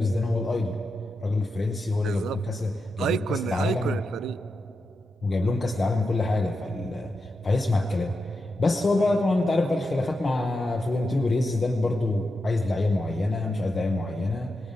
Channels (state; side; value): normal; both; correlation 0.88